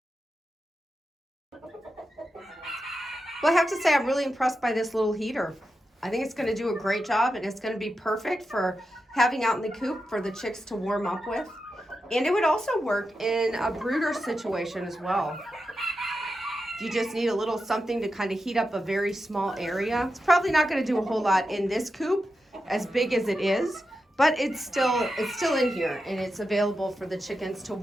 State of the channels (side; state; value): both; normal; correlation 0.89